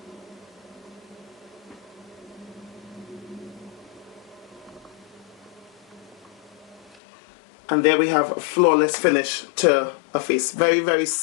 And there we have a flawless finish to a face. Very, very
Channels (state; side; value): drops out; right; at 7.0 s